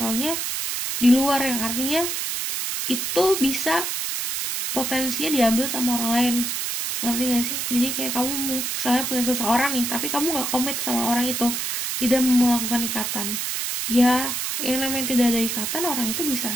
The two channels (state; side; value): noise; right; hiss, 2 dB below the sound